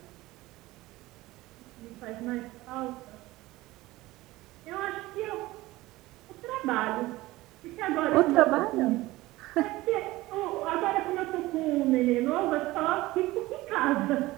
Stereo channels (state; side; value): quieter; left; 18.6 dB